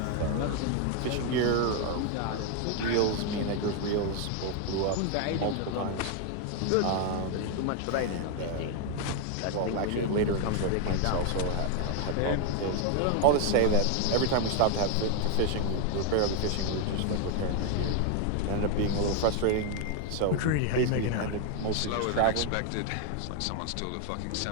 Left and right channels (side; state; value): both; different; correlation 0.01